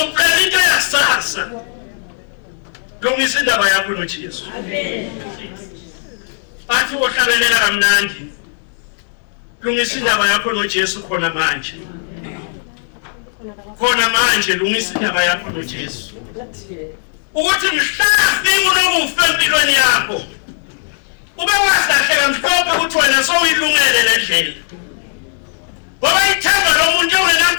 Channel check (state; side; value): silent; right; digital silence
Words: into yasasa lungisa indaba yakho noJesu bathi ohlabelela kamnandi lungisa indaba yakho noJesu khona manje lungisa indaba yakho noJesu ukuthi mhlafi unokufa empilweni yakho ube wahlahleka mhlophe ukuthi wena sowuyilungele le ndlela ngoba ithemba lomuntu